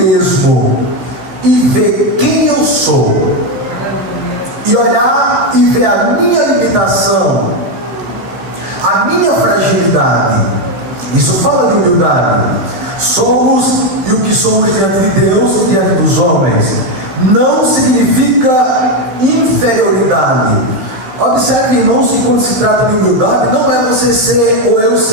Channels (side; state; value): left; late; 15 ms